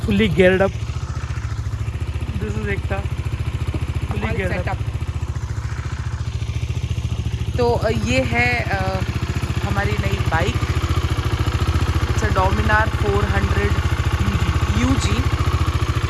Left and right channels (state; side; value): identical; both; correlation 1.00